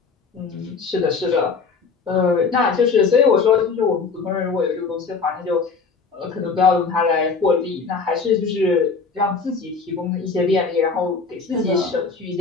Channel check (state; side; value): quieter; right; 4.8 dB